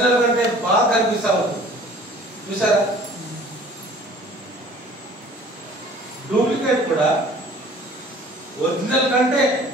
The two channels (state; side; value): normal; both; correlation 0.50